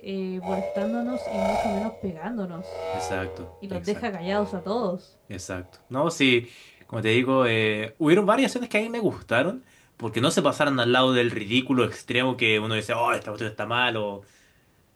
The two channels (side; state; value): both; identical; correlation 1.00